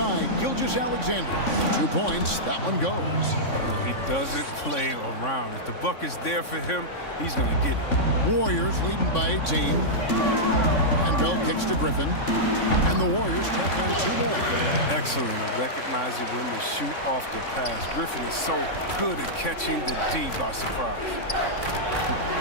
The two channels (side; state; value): right; late; 3.6 ms